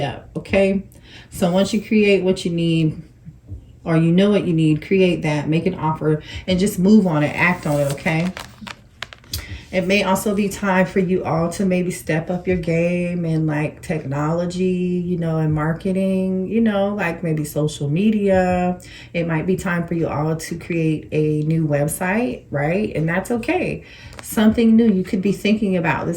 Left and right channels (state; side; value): identical; both; correlation 1.00